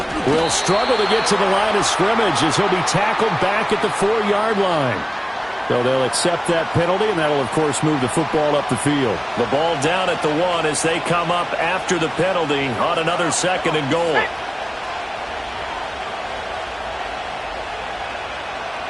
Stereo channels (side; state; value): both; identical; correlation 1.00